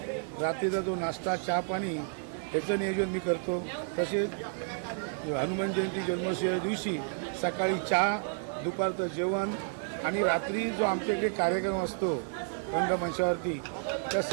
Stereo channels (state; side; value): silent; left; 57 dB below the other